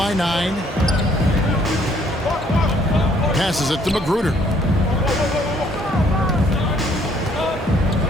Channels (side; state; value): both; normal; correlation 0.64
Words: 9. Passes it to Magruder.